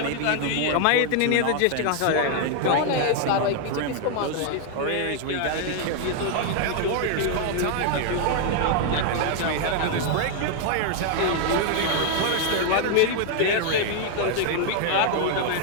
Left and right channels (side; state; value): both; different; correlation 0.00